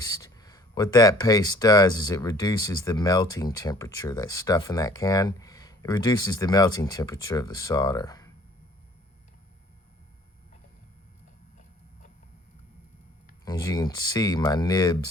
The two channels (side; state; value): both; normal; correlation 0.54